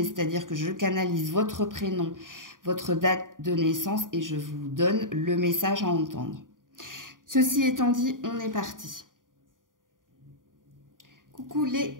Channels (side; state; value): left; late; 0.89 ms